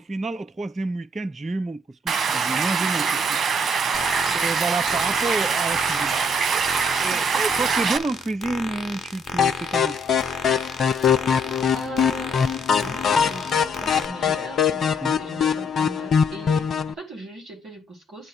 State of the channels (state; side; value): normal; both; correlation 0.68